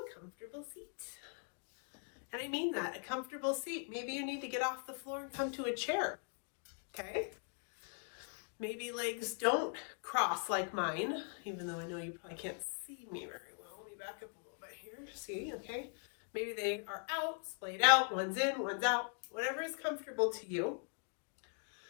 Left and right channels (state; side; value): silent; right; 51 dB below the other